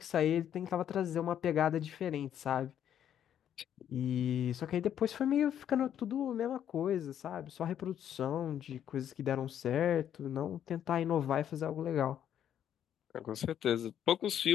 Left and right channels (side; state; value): right; quieter; 9.9 dB